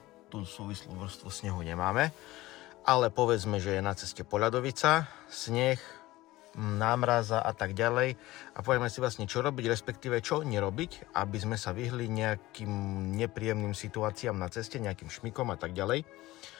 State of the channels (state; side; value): quieter; right; 18.1 dB